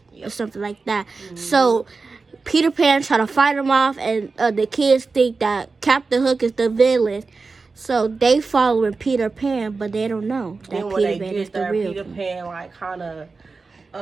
or something like that. So Peter Pan try to fight him off, and the kids think that Captain Hook is the villain, so they following Peter Pan, but they don't know that Peter Pan is the real. Peter Pan like kind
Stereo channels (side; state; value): left; quieter; 4.2 dB